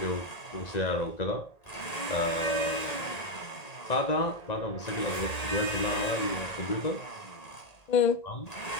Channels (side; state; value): right; late; 1.9 ms